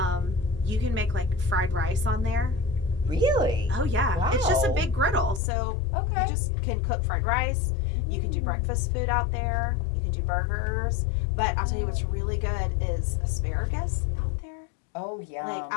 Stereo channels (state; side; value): drops out; right; at 5.4 s